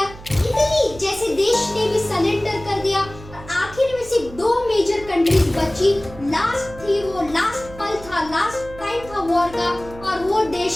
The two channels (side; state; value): right; noise; hum, 17 dB below the sound